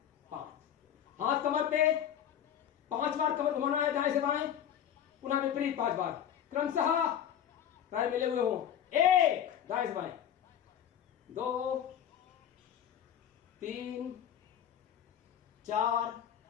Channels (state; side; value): quieter; right; 9.7 dB